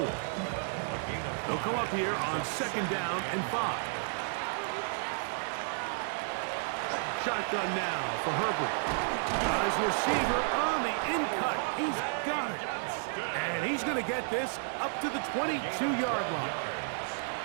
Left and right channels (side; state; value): left; silent; digital silence